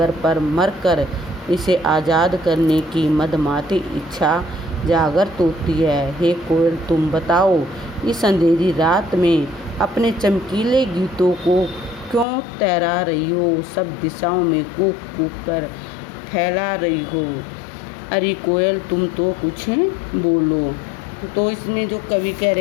पर मरकर इसे आज़ाद करने की मदमाती इच्छा जागृत होती है। हे कोयल, तुम बताओ, इस अंधेरी रात में अपने चमकीले गीतों को क्यों तैरा रही हो, सब दिशाओं में कूक कूक कर फैला रही हो? अरे कोयल, तुम तो कुछ बोलो। तो इसमें जो कवि कह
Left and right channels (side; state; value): right; drops out; at 12.2 s